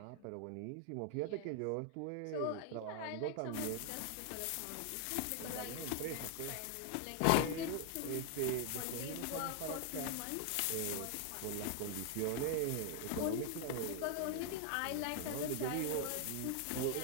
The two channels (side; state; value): both; different; correlation 0.00